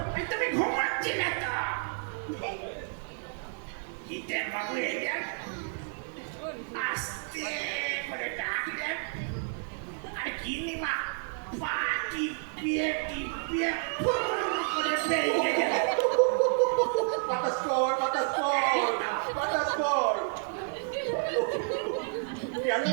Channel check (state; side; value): silent; left; 58 dB below the other